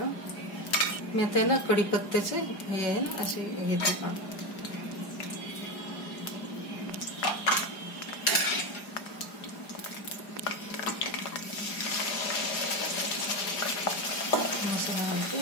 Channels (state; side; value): late; right; 4.9 ms